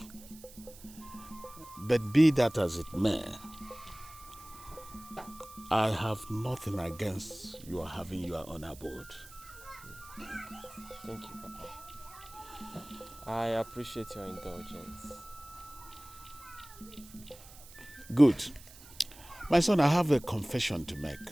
But be that as it may, I have nothing against your having your own abode. Thank you, Papa. I appreciate your indulgence. Good. My son, I have a confession to make.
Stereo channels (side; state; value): right; noise; hiss, 19 dB below the sound